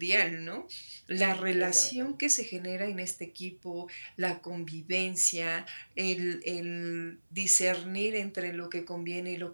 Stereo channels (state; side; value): inverted; both; correlation -1.00